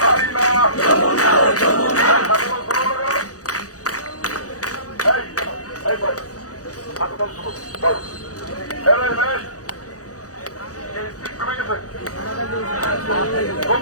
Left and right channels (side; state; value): right; late; 0.67 ms